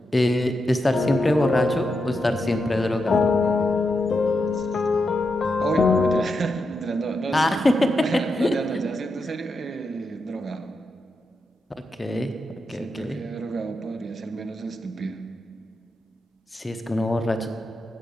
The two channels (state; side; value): normal; both; correlation 0.85